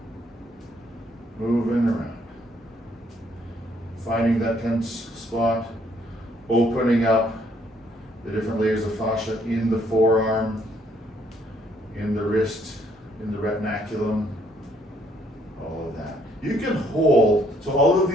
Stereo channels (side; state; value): both; normal; correlation 0.68